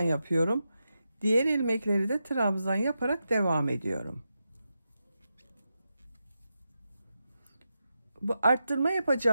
Diğer ilmekleri de trabzan yaparak devam ediyorum. Bu arttırma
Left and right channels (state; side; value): inverted; both; correlation -0.88